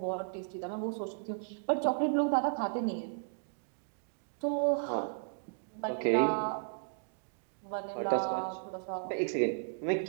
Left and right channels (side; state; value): left; silent; digital silence